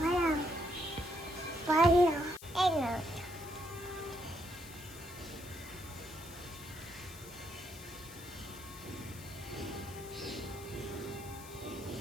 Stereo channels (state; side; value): noise; left; hiss, 16 dB below the sound